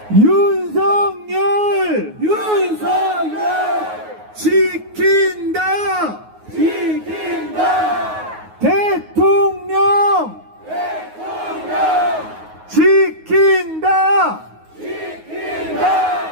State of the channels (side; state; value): left; late; 9.5 ms